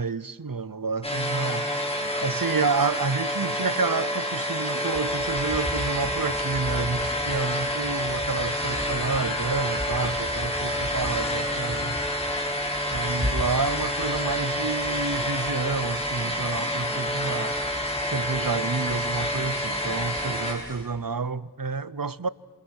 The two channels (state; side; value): normal; both; correlation 0.09